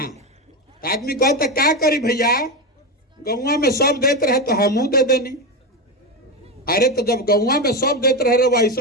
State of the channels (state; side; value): normal; both; correlation 0.14